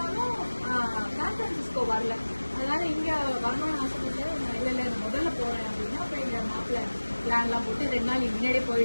சான் பிரான்சிஸ்கோ வரல. அதனால இங்கே வரணும்னு ஆசைப்பட்டு இல்லை முதல்ல போகிறேன் அப்படின்னா அப்போ எங்கள் மாப்பிள்ளை பிளான்லாம் போட்டு 2 நாள் முன்னாடியே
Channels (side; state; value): both; inverted; correlation -1.00